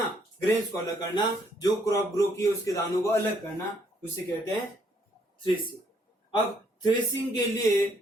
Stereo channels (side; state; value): both; normal; correlation 0.69